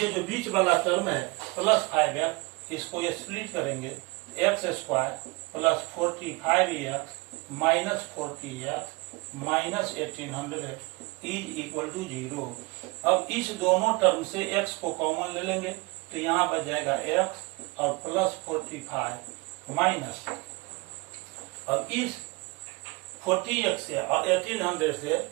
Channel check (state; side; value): quieter; left; 26.5 dB